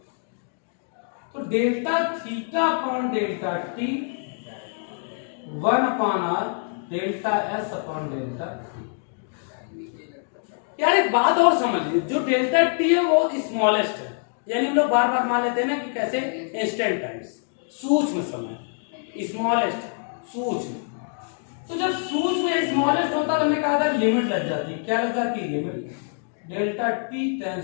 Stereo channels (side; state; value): right; silent; 62 dB below the other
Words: तो delta theta upon delta T 1 upon R delta s upon delta T. यार एक बात और समझ लीजिए, जो डेल्टा टी है वो स्मॉलेस्ट है, यानी हम लोग बार बार मान लेते हैं ना कि कैसे इंस्टेंट टाइम्स, सूक्ष्म समय, स्मॉलेस्ट, सूक्ष्म। तो जब सूक्ष्म स्मॉलेस्ट होता तो हमने कहा था लिमिट लग जाती। क्या लग जाती? Limit. Delta t